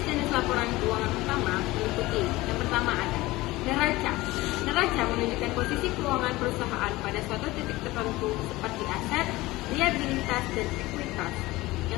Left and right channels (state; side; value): quieter; right; 19.3 dB